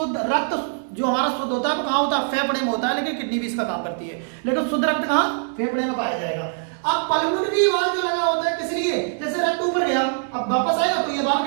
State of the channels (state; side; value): silent; left; 64 dB below the other